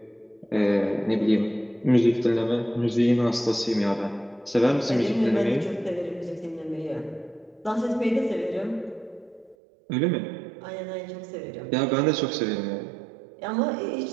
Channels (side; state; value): left; drops out; at 9.6 s